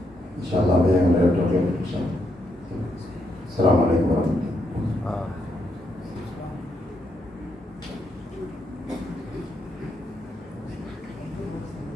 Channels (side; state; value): both; normal; correlation 0.78